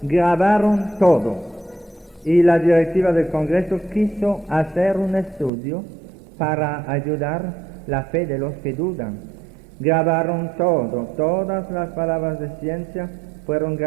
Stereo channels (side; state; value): left; drops out; at 5.5 s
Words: grabaron todo, y la directiva del Congreso quiso hacer un estudio para ayudar la fe de los que dudan. Grabaron todo, todas las palabras de ciencia fueron